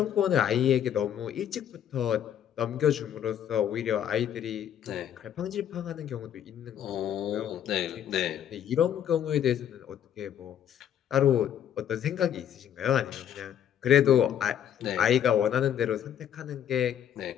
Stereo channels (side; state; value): right; quieter; 9.8 dB